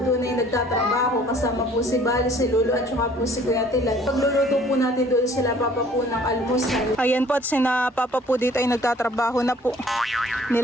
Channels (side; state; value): both; normal; correlation 0.55